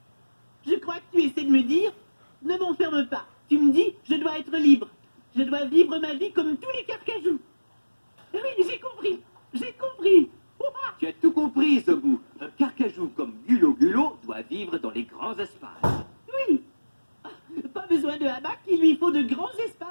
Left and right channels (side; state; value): both; inverted; correlation -1.00